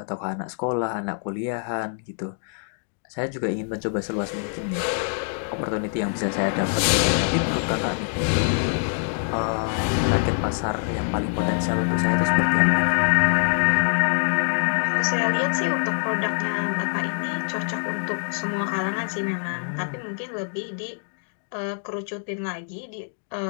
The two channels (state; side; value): silent; right; 62 dB below the other